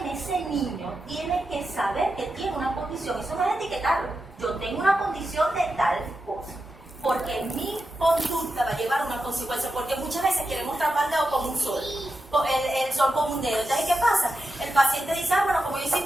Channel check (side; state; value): both; normal; correlation 0.89